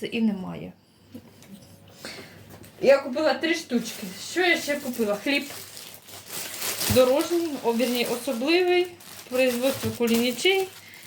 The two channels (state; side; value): identical; both; correlation 1.00